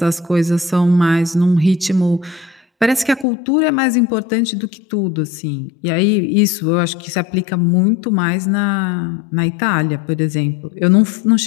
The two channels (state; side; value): drops out; right; at 3.2 s